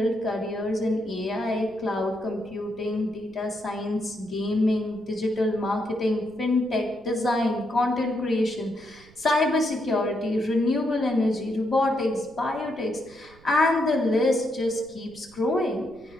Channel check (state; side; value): noise; right; rumble, 25 dB below the sound